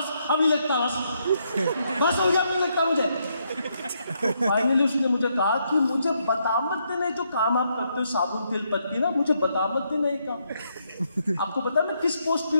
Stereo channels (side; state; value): both; inverted; correlation -0.77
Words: अब नहीं लगता, बस हो गया, अब नहीं लगता मुझे। फाइनली उसने मुझे कहा कि मुझे बता मत देना जो काम आप करते हो, साबुन तेल पत्ती ना, मुझे बता मत देना ये काम। आपको पता है मैं किस पोस्ट पे